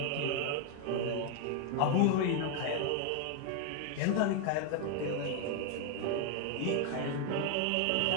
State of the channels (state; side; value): different; both; correlation 0.01